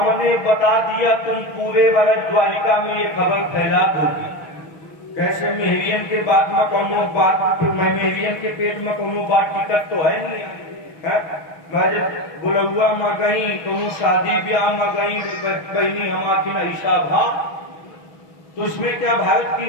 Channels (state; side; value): late; right; 6.3 ms